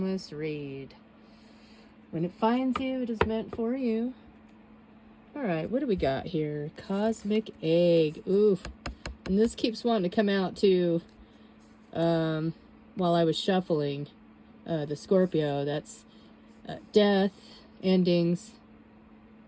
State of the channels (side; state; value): both; identical; correlation 1.00